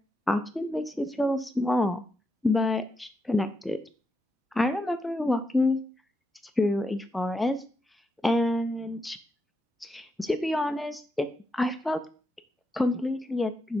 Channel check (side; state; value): both; normal; correlation 0.84